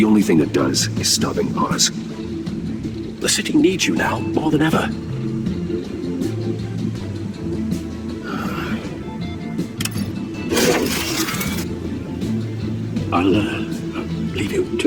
only thing that does is stopping Oz. The city needs you now, more than ever. I'll leave you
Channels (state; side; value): identical; both; correlation 1.00